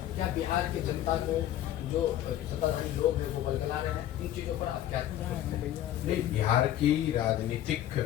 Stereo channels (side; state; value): right; quieter; 12.4 dB